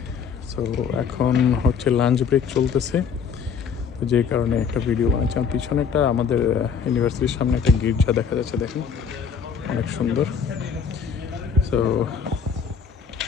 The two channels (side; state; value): right; quieter; 6.5 dB